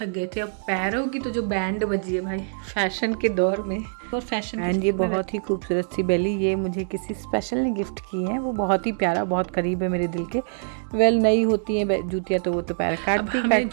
गए थे। अब पैरों की तो जो बैंड बजी है भाई, फैशन के दौर में और फैशन। एंड ये बहुत ही खूबसूरत सी बेली, ये मुझे किसी स्पेशल ने गिफ्ट की है। वो बहुत ही प्यारा, बहुत करीब है मेरे दिल के। वेल नई होती हैं जूतियाँ तो वो तो पैर काटती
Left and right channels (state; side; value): silent; left; 62 dB below the other